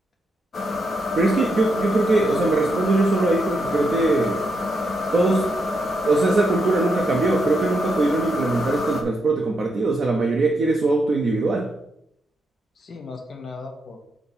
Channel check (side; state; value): both; normal; correlation 0.81